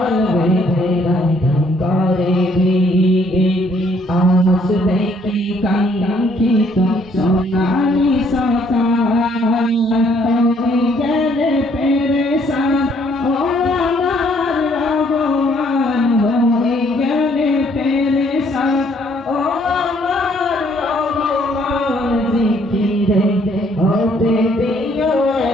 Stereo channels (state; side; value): normal; both; correlation 0.65